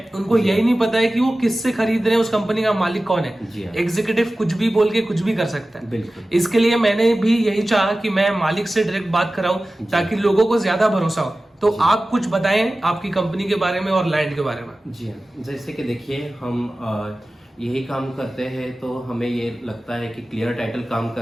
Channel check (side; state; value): both; normal; correlation 0.96